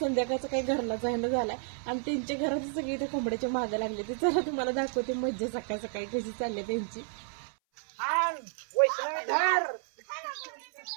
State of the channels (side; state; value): left; silent; 57 dB below the other